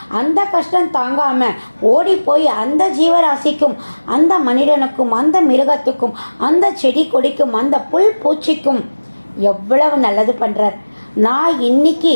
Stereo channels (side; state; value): both; inverted; correlation -1.00